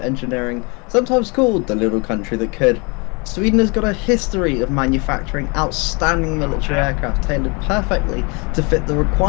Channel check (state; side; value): quieter; right; 30.7 dB